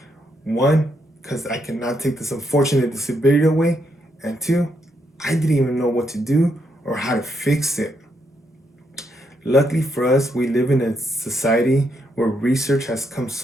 One, because I cannot take this unfortunate disability away, and two, I didn't even know what to do or how to fix it. Luckily for us, we live in a society where research has come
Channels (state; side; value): normal; both; correlation 0.78